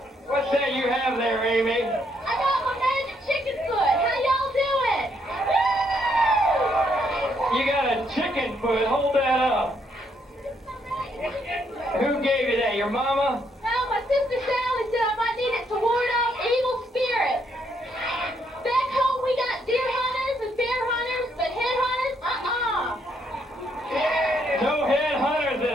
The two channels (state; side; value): normal; both; correlation 0.73